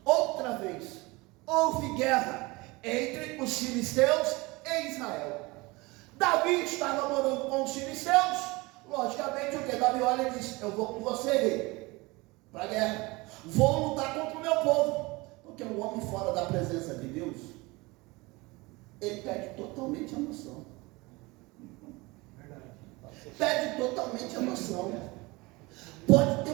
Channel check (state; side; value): quieter; left; 23.5 dB